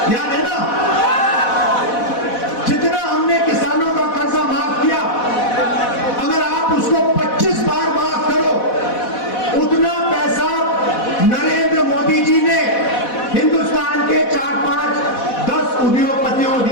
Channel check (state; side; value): late; right; 4.1 ms